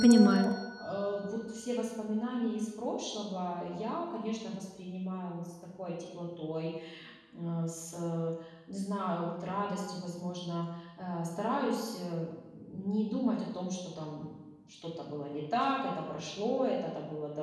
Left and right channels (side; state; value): both; identical; correlation 1.00